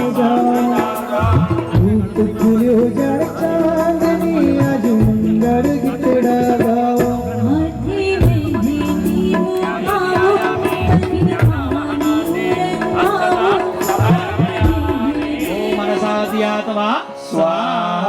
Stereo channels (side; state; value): both; identical; correlation 1.00